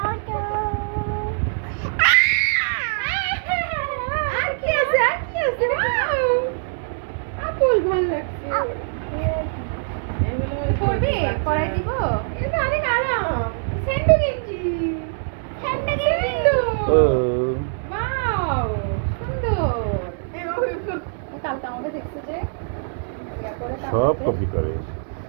সব কপি করে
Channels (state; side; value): silent; left; digital silence